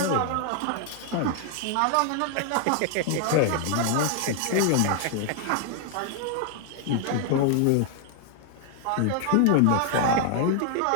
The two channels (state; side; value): different; both; correlation 0.00